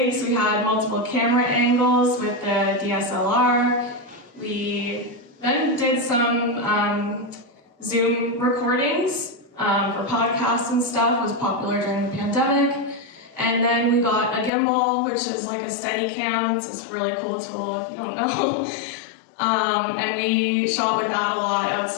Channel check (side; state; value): right; drops out; at 14.5 s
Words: We had multiple camera angles with the DSLR. We then did some Zoom recordings for podcasts and stuff. It was popular during the pandemic. And then we got a gimbal, which is like a Steadicam. It's this really cool tool if you don't know. And we shot with that a lot